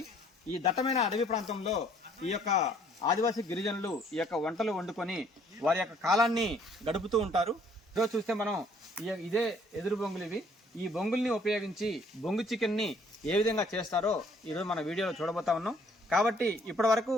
ఈ దట్టమైన అడవి ప్రాంతంలో ఈ యొక్క ఆదివాసీ గిరిజనులు ఈ యొక్క వంటలు వండుకొని వారి యొక్క కాలాన్ని గడుపుతూ ఉంటారు. ఈరోజు చూస్తే మనం ఇదే ఎదురు బొంగులు ఇవి. ఈ బొంగుల్ని ఉపయోగించి బొంగు చికెన్ని ఏ విధంగా చేస్తారో ఈరోజు మన వీడియోలో చూడబోతా ఉన్నాం. కాబట్టి ఇప్పటి వరకు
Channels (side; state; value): both; normal; correlation 0.61